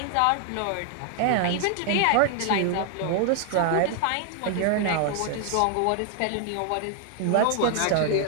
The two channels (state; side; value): different; both; correlation 0.00